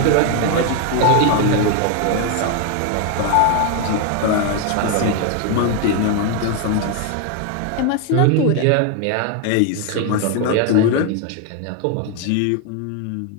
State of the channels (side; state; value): both; different; correlation 0.01